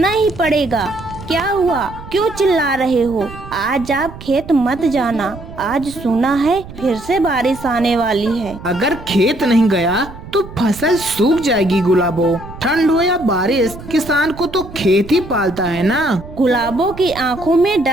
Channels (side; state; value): right; noise; rumble, 15 dB below the sound